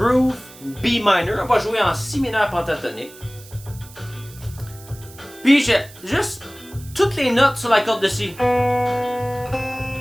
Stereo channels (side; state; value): right; noise; hiss, 20 dB below the sound